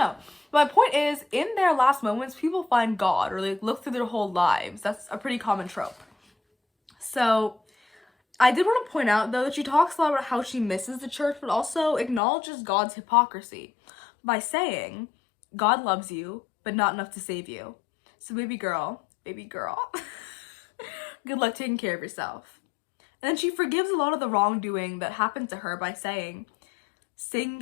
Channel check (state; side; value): drops out; right; at 12.2 s